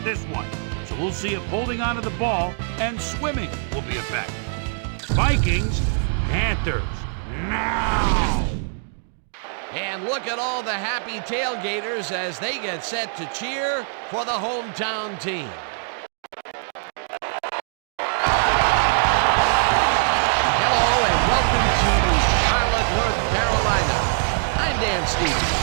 this one. So we'll see if holding onto the ball and swimming will be effective. Vikings, Panthers, now! And look at all the happy tailgaters as they get set to cheer for the hometown team. Hello and welcome to Charlotte, North Carolina. I'm Dan Stevens.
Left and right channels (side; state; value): left; silent; digital silence